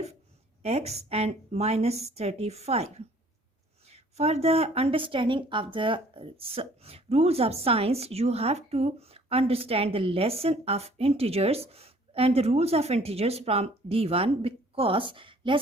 x and minus 35. For the understanding of the rules of science, you have to understand the lesson of integers and the rules of integers from D1, because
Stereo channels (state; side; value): normal; both; correlation 0.56